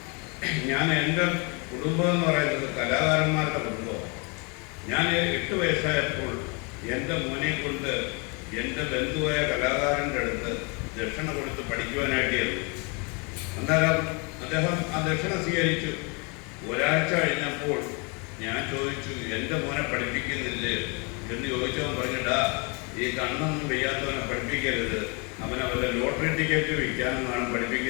ഞാൻ. എൻ്റെ കുടുംബം എന്ന് പറയുന്നത് കലാകാരന്മാരുടെ കുടുംബമാണ്. ഞാൻ 8 വയസ്സായപ്പോൾ എൻ്റെ മോനെ കൊണ്ട് എൻ്റെ ബന്ധുവായ കലാകാരൻ്റെ അടുത്ത് ദക്ഷിണ കൊടുത്ത് പഠിക്കുവാനായിട്ടായിരുന്നു. അന്നേരം അദ്ദേഹം ആ ദക്ഷിണ സ്വീകരിച്ചു. ഒരാഴ്ച കഴിഞ്ഞപ്പോൾ ഞാൻ ചോദിച്ചു, എൻ്റെ മോനെ പഠിപ്പിക്കുന്നില്ലേ എന്ന് ചോദിച്ചവൻ പറഞ്ഞിട്ടാ, ഈ കണ്ണൊന്നും വയ്യാത്തവനെ പഠിപ്പിക്കരുത്, അവനെ വല്ല ലോട്ടറി ടിക്കറ്റ് വിൽക്കാനെന്നാണ്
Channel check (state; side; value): quieter; right; 32.4 dB